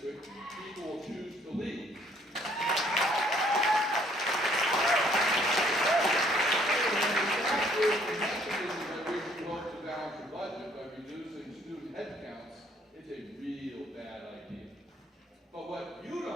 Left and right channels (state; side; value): normal; both; correlation 0.62